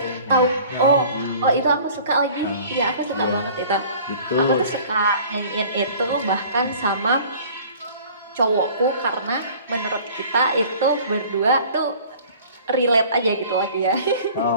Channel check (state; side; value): inverted; both; correlation -0.48